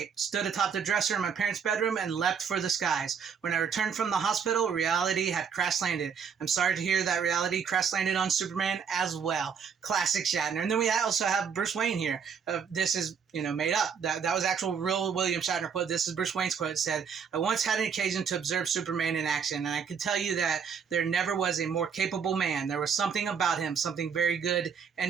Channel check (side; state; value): left; quieter; 6.8 dB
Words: Stood atop the dresser in my parents' bedroom and leapt for the skies. When I returned from the hospital, reality had crash landed. I'm sorry to hear that reality crash landed on Superman as well. Classic Shatner. And then we also have Bruce Wayne here. This is, made up. That was actual real William Shatner quote. This is Bruce Wayne's quote. It said, I once had an occasion to observe Superman in action, and I can tell you that there never was a more capable man. There was something about him, something very good